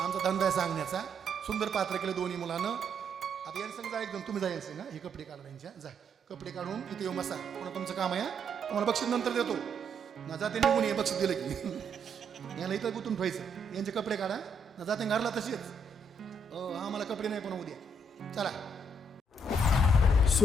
धंदा आहे सांगण्याचा. सुंदर पात्र केलं दोन्ही मुलानं. आता यांचं सांग जा एकदम, तुम्ही जा यांचं ना, हे कपडे काढा यांच्या. जा कपडे काढून इथे येऊ बसा. कोणा तुमचं काम आहे, तुम्हाला बक्षीस नंतर देतो ना. जाते निघून ये बक्षीस दिलं की. याला इथं गुंतून ठेवायचं. यांचे कपडे काढा ना. जाते घरला तशीच. आम्हाला कपडे नाही पण उद्या. चला.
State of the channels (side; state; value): both; normal; correlation 0.73